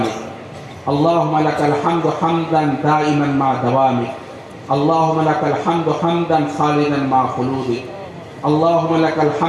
अल्लाहुम्मा लकल हम्दु हम्दन दाइमन मा दवामिक, अल्लाहुम्मा लकल हम्दु हम्दन खालिदन मा खुलूदिक, अल्लाहुम्मा लकल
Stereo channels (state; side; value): identical; both; correlation 1.00